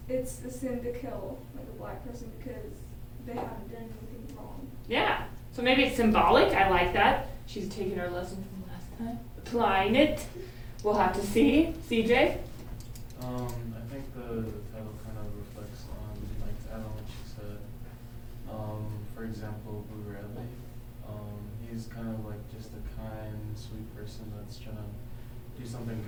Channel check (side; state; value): both; identical; correlation 1.00